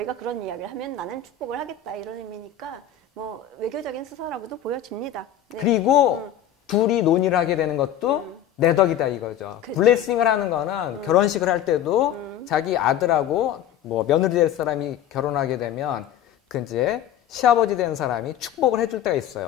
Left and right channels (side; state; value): right; quieter; 9.9 dB